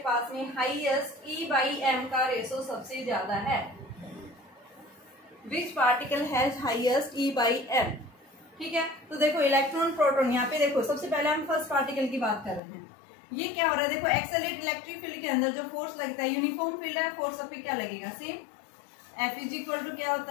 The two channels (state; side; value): drops out; right; at 12.6 s